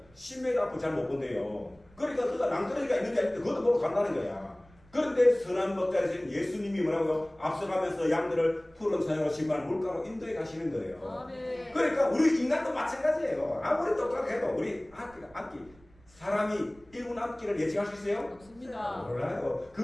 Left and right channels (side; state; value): right; noise; rumble, 28 dB below the sound